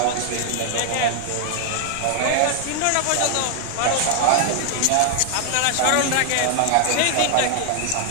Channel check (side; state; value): both; different; correlation 0.00